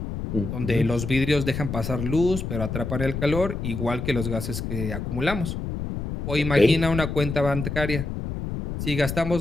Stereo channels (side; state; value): left; noise; rumble, 5 dB below the sound